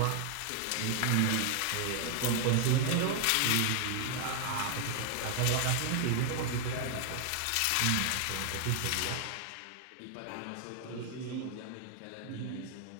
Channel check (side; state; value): both; different; correlation 0.00